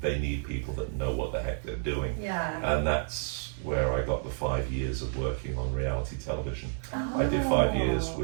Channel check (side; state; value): left; silent; 58 dB below the other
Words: they need people that know what the heck they're doing. And that's where I got the 5 years of working on reality television. I did 5 years